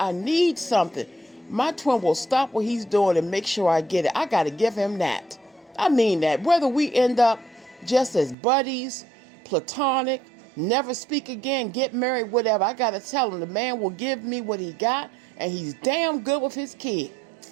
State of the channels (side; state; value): left; drops out; at 8.3 s